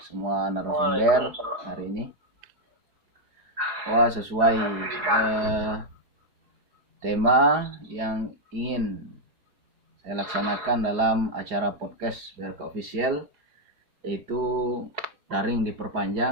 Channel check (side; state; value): left; late; 4.9 ms